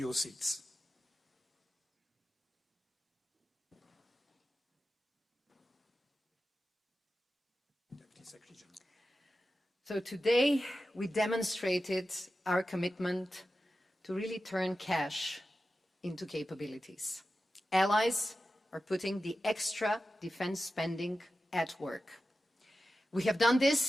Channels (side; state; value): both; normal; correlation 0.93